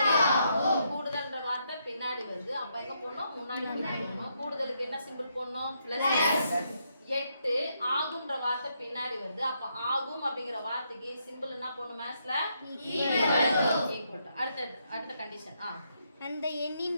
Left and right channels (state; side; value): inverted; both; correlation -0.77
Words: ஆகும். கூடுதல்ன்ற வார்த்தை பின்னாடி வருது. அப்ப எங்க போடணும்? முன்னாடி போடணும். கூடுதலுக்கு என்ன சிம்பிள் போடணும்? பிளஸ். 8 ஆகும்ன்ற வார்த்தை பின்னாடி வருது. அப்ப ஆகும் அப்படிங்கிற வார்த்தைக்கு சிம்பிள் என்ன போடணும்? மேத்ஸ்ல ஈக்குவல் டு. அடுத்த கண்டிஷன். அந்த எண்ணின்